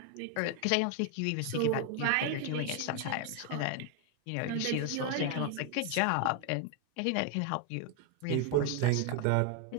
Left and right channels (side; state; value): both; different; correlation 0.01